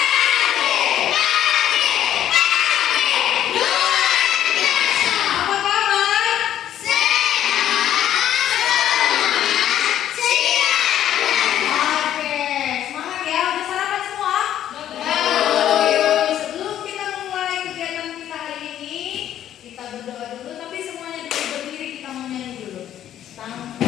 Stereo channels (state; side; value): quieter; right; 11.1 dB